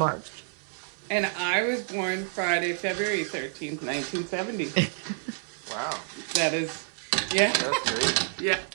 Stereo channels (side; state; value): left; silent; 59 dB below the other